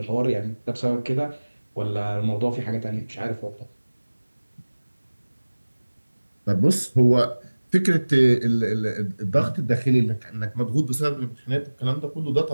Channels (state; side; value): inverted; both; correlation -1.00